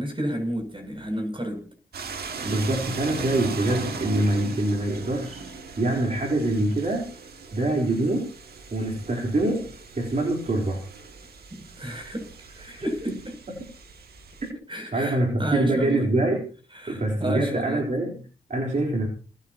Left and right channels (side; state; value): both; normal; correlation 0.72